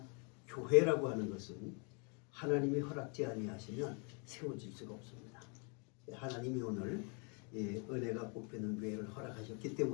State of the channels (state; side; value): quieter; right; 35.5 dB